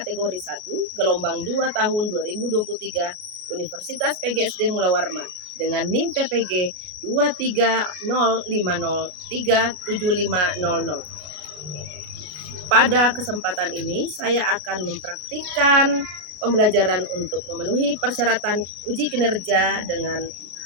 1, gelombang 2 tahun 2023, Universitas PGSD Mula Warman, dengan NIM PPG 230503750. Pada kesempatan ini, saya akan mempraktikkan pembelajaran untuk memenuhi persyaratan uji kinerja dengan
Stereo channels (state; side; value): late; left; 33 ms